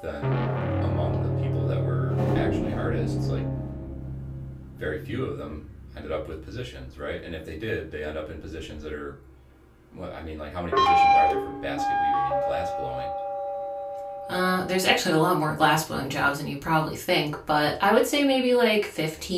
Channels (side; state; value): both; identical; correlation 1.00